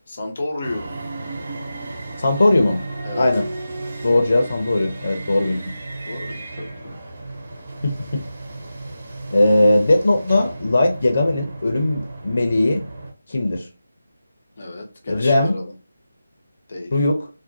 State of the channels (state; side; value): inverted; both; correlation -0.93